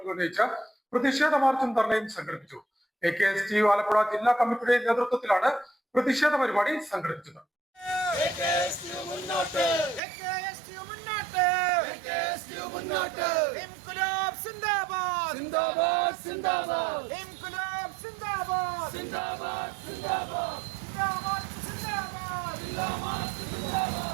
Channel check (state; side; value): drops out; left; at 10.0 s